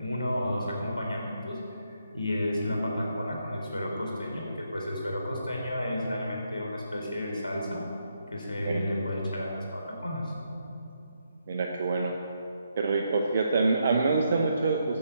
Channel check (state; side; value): inverted; both; correlation -0.79